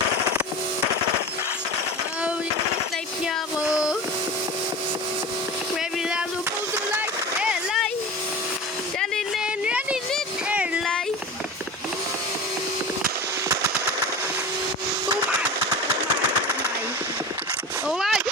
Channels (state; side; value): normal; both; correlation 0.31